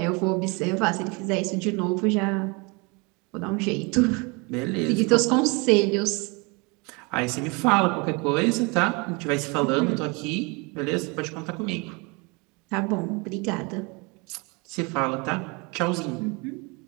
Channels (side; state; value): left; quieter; 29.0 dB